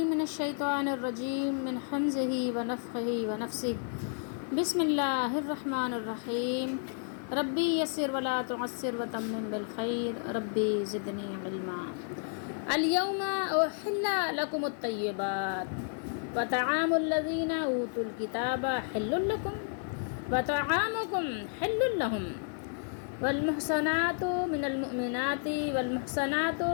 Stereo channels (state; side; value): silent; right; 57 dB below the other